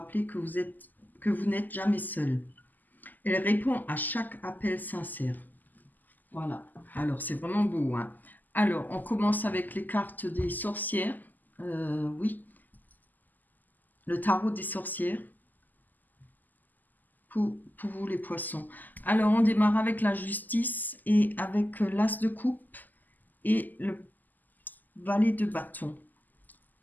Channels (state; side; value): late; right; 0.085 ms